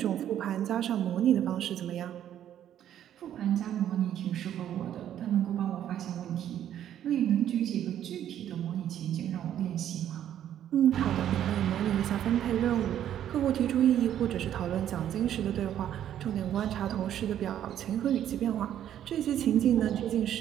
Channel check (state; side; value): quieter; left; 10.7 dB